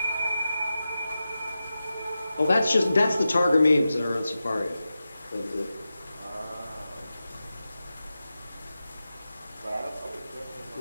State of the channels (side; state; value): both; inverted; correlation -0.92